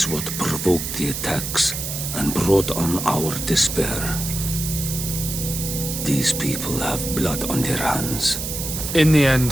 what provoked the attacks and brought on our despair. These people have blood on their hands. In the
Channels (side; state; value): right; noise; hiss, 5 dB below the sound